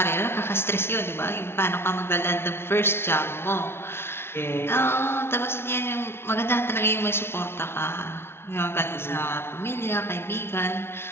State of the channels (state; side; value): late; right; 0.12 ms